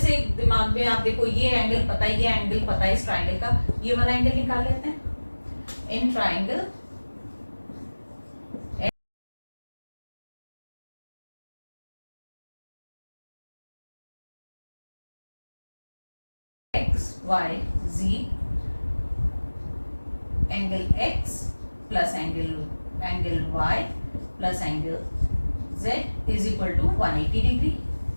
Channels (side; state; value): both; inverted; correlation -1.00